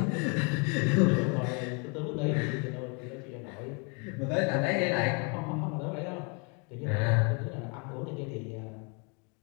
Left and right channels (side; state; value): right; quieter; 34.6 dB